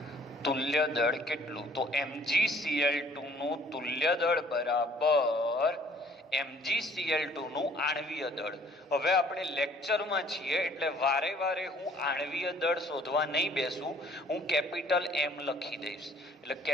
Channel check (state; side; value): normal; both; correlation 0.57